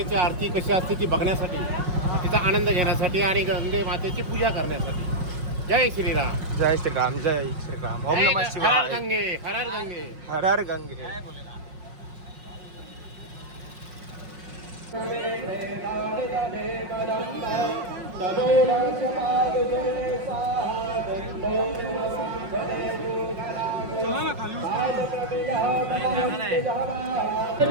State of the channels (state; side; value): late; left; 5.5 ms